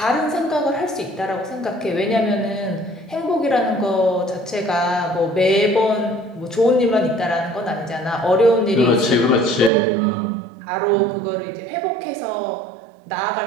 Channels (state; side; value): drops out; left; at 9.7 s